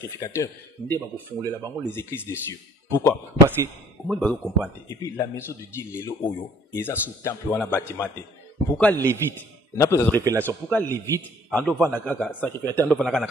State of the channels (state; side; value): normal; both; correlation 0.57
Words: nde ba ko fongolela bango les églises des cieux. Pourquoi? Parce que au moins bazo comprendre et puis la maison de Dieu lelo oyo eza sous temple wana bâtiment. Pourquoi Lévite? On a pas de révélation. Pourquoi Lévite, en devant la sacrificateur, en devant